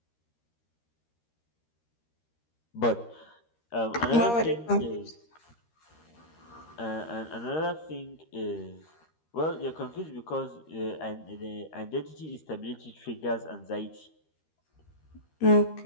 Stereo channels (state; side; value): late; right; 13 ms